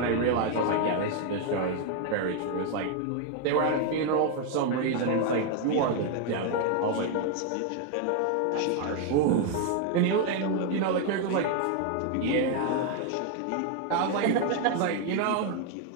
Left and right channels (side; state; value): both; different; correlation 0.01